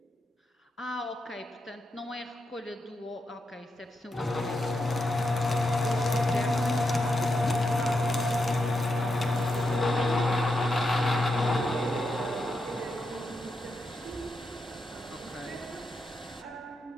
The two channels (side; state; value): both; normal; correlation 0.85